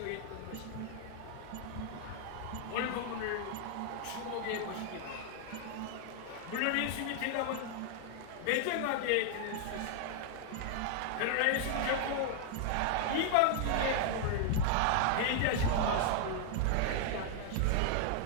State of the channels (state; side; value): different; both; correlation 0.00